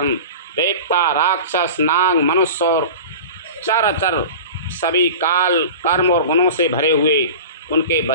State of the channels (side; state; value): both; inverted; correlation -0.35